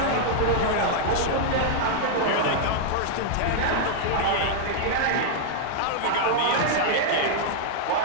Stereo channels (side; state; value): both; different; correlation -0.01